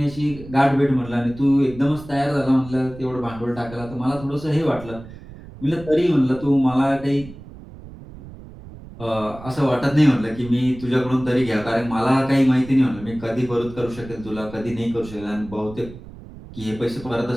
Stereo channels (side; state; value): right; noise; rumble, 16 dB below the sound